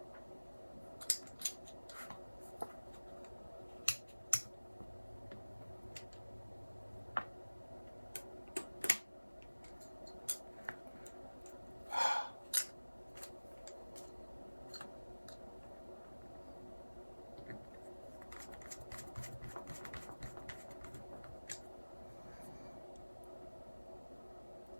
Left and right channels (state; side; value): inverted; both; correlation -1.00